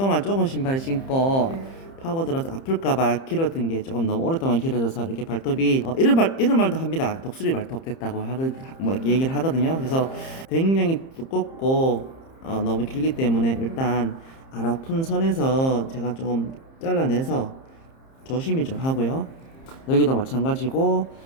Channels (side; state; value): right; late; 30 ms